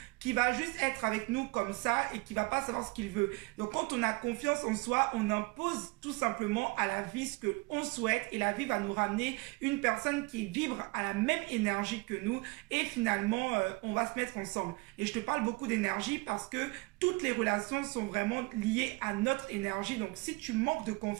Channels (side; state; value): left; quieter; 25.8 dB